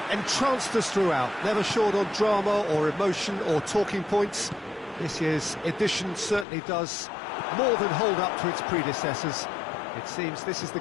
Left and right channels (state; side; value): drops out; right; at 6.5 s